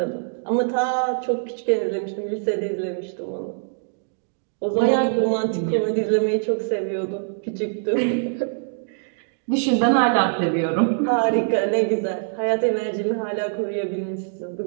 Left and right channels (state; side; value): silent; left; digital silence